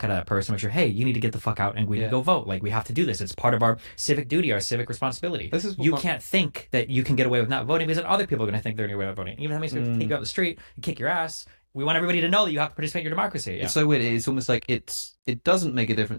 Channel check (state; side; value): inverted; both; correlation -1.00